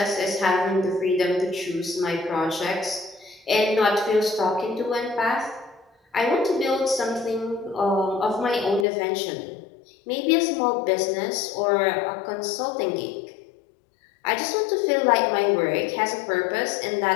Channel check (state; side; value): drops out; right; at 8.8 s